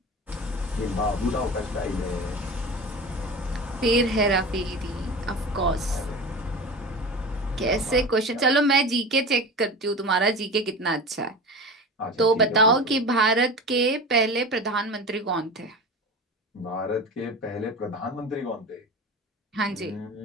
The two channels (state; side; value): normal; both; correlation 0.32